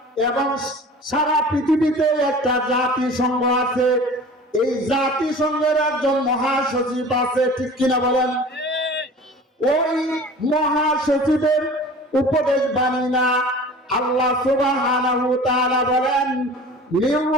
এবং সারা পৃথিবীতে একটা জাতিসংঘ আছে, এই জাতিসংঘের একজন মহাসচিব আছে, ঠিক কিনা বলেন? ওই মহাসচিবের উপদেশ বাণী না। আল্লাহ সুবহানাহু ওয়া তাআলা বলেন মির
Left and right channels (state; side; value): normal; both; correlation 0.41